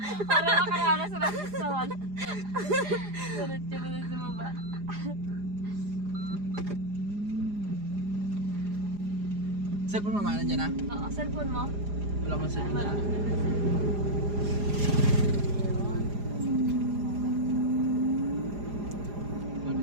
para makaranas sa restawan. Diretso mo na sa baba. Cellphone mo, manan dyan ha? Oo, cellphone mo. Wala mong cellphone Wala. dyan.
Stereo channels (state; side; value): late; left; 4.9 ms